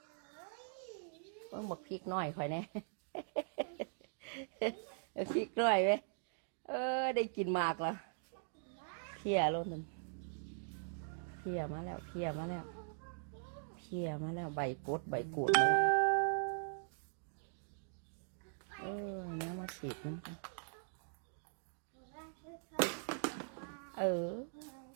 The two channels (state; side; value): silent; left; digital silence